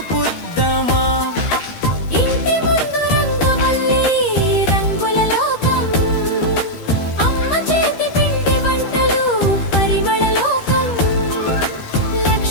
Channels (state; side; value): late; right; 13 ms